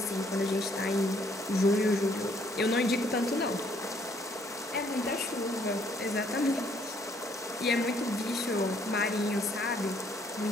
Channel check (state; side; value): normal; both; correlation 0.66